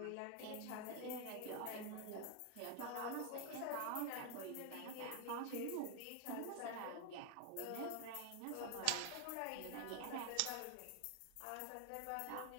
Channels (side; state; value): both; different; correlation 0.01